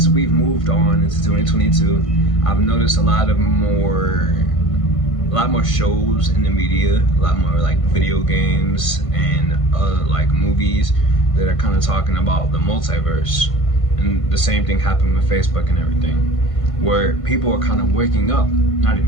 we've moved on into 2022, I've noticed a lot more shows in the media, a lot more like video games and like movies that are kind of talking about the multiverse. And the same thing happened with Facebook and everything, where people are kind of waking up, not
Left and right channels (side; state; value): right; late; 1.5 ms